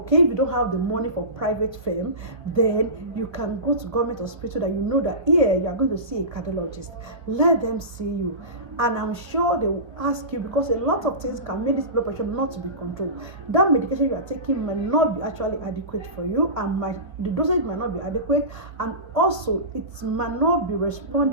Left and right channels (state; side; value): late; left; 1.7 ms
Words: if you don't have the money for private firm, then you can go to government hospital that you know that here you are going to see a cardiologist. Let them see you, and I'm sure they will ask you, because a lot of things can make this blood pressure not to be controlled. That medication you are taking might not be actually adequate for you, and the dosage might not be adequate, and also it might not be